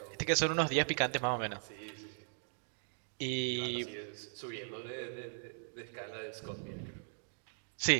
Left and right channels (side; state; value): left; silent; digital silence